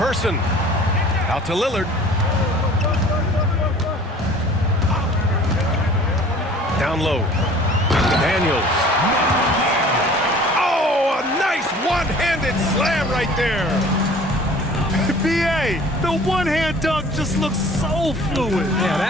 Out to Lillard. Down low. Daniels. Oh, a nice one-handed slam right there. B.A., the one-hand dunk just looks so fluid. Yeah,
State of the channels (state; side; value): normal; both; correlation 0.48